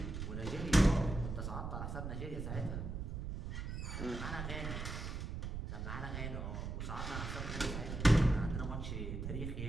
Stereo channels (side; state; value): right; noise; rumble, 5 dB below the sound